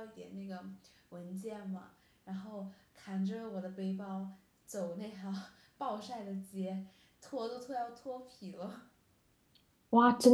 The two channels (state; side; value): identical; both; correlation 1.00